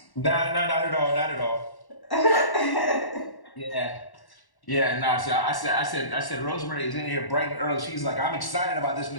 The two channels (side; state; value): right; late; 1.1 ms